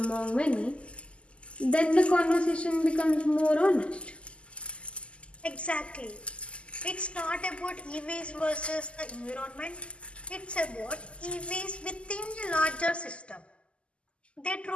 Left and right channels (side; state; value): right; late; 0.054 ms